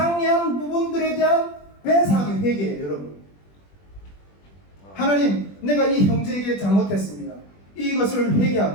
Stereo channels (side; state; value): right; late; 20 ms